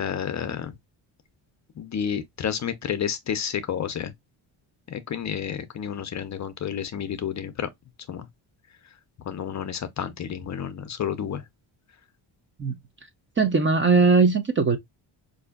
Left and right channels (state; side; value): normal; both; correlation 0.14